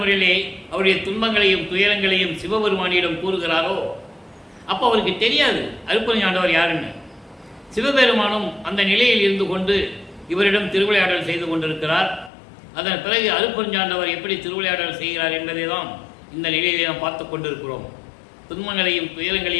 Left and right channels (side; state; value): right; drops out; at 12.3 s